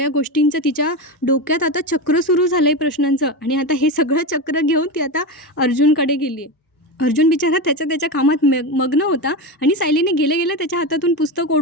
गोष्टींचं तिच्या डोक्यात आता चक्र सुरू झालं आहे प्रश्नांचं. आणि आता हे सगळं चक्र घेऊन ती आता अर्जुनकडे गेली आहे. अर्जुन बिचारा त्याच्या कामात मग्न होता आणि सायलीने गेल्या गेल्या त्याच्या हातातून पुस्तक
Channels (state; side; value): normal; both; correlation 0.18